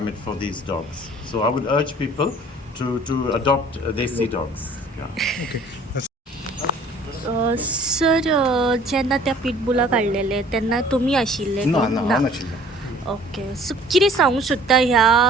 for these dogs. So I would urge people to adopt desi dogs. Yeah. Sir जेन्ना त्या पिटबुला काडलेले तेन्ना तुमी आशिल्ले ना कोण? ना ना. हांव नाशिल्लो. ओके सो कितें सांगूं सोदता ह्या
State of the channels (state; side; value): normal; both; correlation 0.52